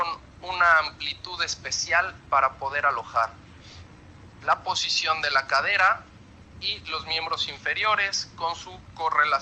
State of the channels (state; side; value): identical; both; correlation 1.00